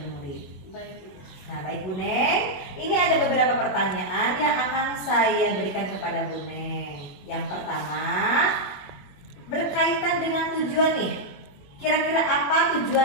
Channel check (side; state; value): right; late; 21 ms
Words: murid. Baik Bu. Nah, baik Bu Neng, ini ada beberapa pertanyaan yang akan saya berikan kepada Bu Neng. Yang pertama, berkaitan dengan tujuan nih. Kira-kira apa